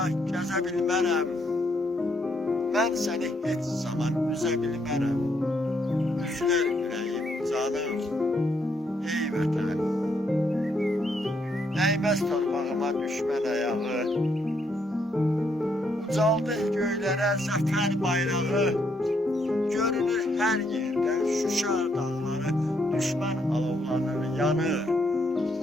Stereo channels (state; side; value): normal; both; correlation 0.74